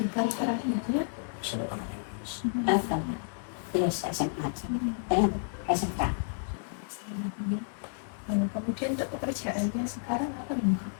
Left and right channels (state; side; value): silent; right; digital silence